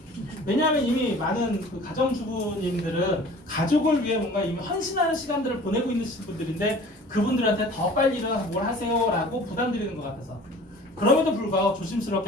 왜냐하면 이미 많은 그 가정주부님들은 가족을 위해 뭔가 이미 헌신하는 시간들을 보내고 있는 분들인데 그분들한테 더 빨리 일어나서 뭘 하세요라고 부담드리는 것 같아서. 그럼에도 불구하고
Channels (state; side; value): normal; both; correlation 0.46